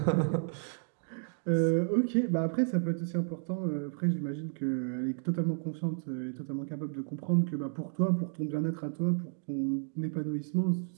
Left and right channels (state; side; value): silent; left; 56 dB below the other